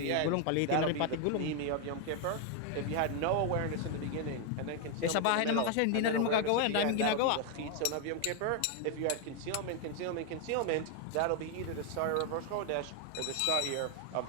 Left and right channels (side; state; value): both; different; correlation 0.01